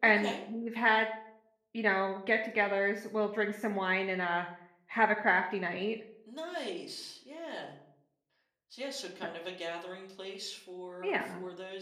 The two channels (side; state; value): both; identical; correlation 1.00